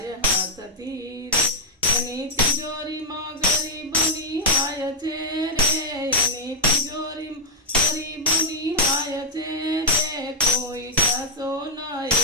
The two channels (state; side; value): normal; both; correlation -0.02